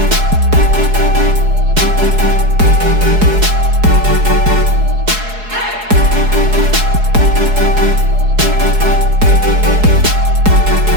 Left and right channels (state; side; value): late; left; 4.7 ms